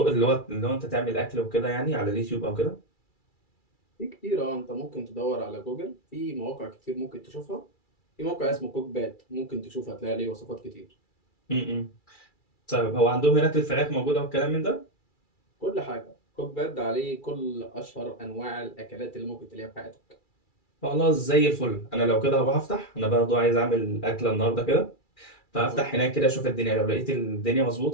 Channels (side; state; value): right; late; 2.3 ms